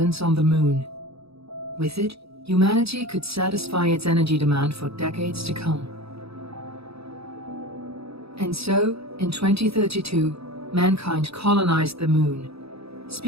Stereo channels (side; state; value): left; late; 0.77 ms